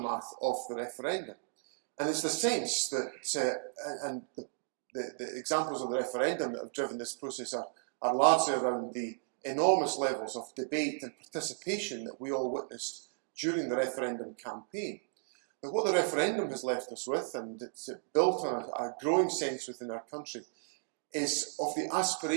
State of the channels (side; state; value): left; silent; digital silence